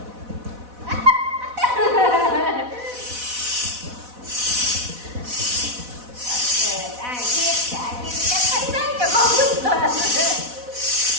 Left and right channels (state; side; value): late; left; 4.1 ms